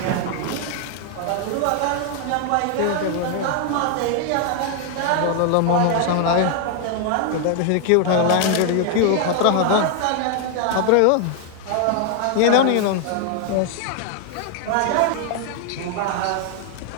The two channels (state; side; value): different; both; correlation 0.00